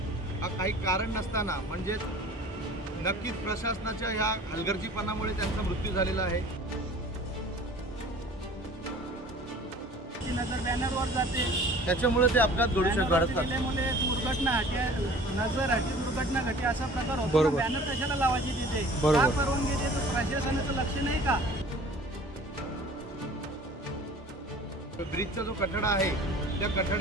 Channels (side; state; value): both; normal; correlation 0.46